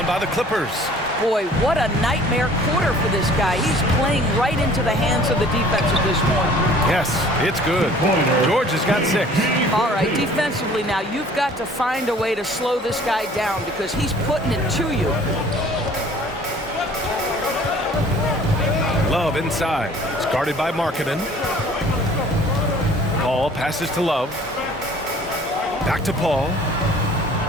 by the Clippers. Boy, what a nightmare quarter for this guy. He's playing right into the hands of the defense at this point. Yes, it's good. George has got 6. All right, defensively now, you've got to find a way to slow this guy down because he's putting it to you. Love inside. It's guarded by Markkanen. Paul passes to Love. Back to Paul.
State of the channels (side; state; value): both; normal; correlation 0.51